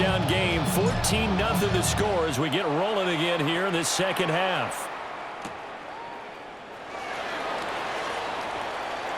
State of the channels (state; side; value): identical; both; correlation 1.00